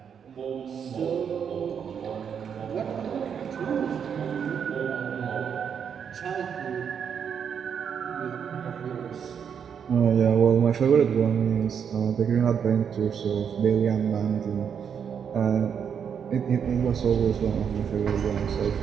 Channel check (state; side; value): quieter; left; 7.5 dB